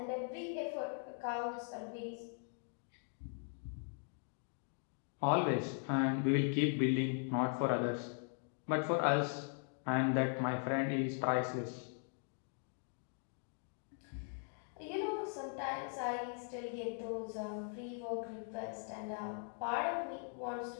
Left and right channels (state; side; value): silent; right; 51 dB below the other